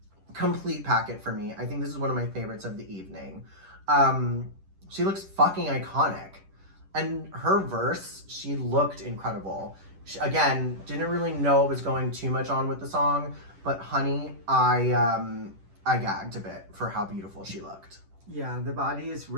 complete packet for me. I think this is one of my favorites of the evening. She looks fucking iconic. And her verse, she looked incredible. She, again, didn't really know it was going too much on with the song, but honey, I gagged a bit for how beautiful she looked. Yeah, the body is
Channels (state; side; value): late; left; 10 ms